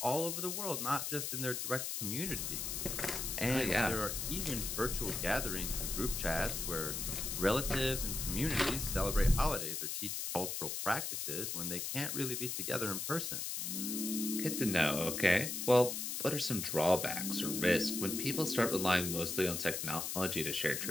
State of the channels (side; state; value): left; noise; hiss, 3 dB below the sound